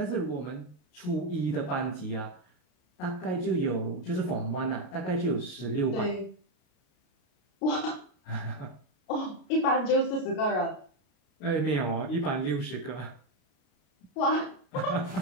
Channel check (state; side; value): late; right; 33 ms